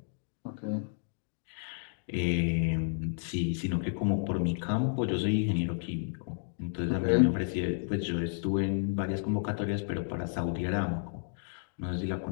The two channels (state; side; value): silent; right; digital silence